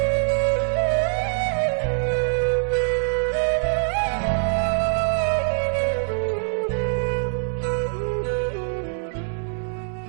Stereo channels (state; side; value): silent; left; 63 dB below the other